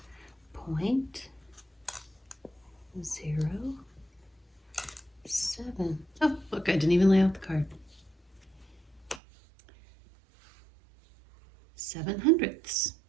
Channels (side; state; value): left; drops out; at 9.2 s